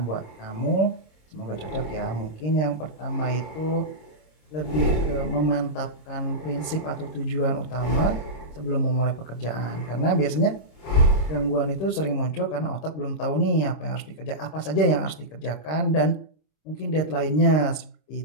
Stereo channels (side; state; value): right; late; 26 ms